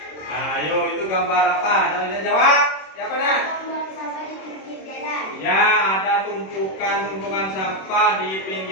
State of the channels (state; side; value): late; right; 26 ms